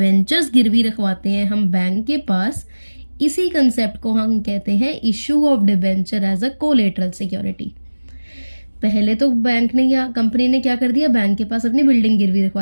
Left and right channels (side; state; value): both; inverted; correlation -1.00